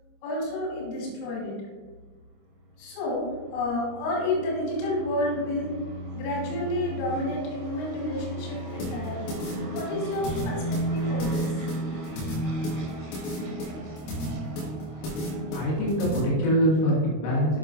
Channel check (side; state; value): right; late; 26 ms